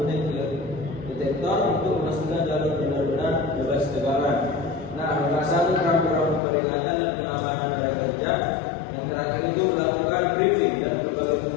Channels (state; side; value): drops out; right; at 6.4 s